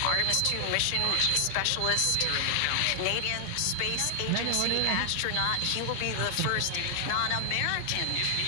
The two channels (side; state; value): both; different; correlation 0.00